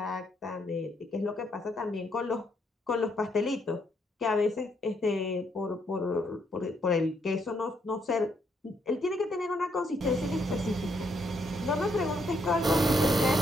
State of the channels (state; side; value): normal; both; correlation 0.74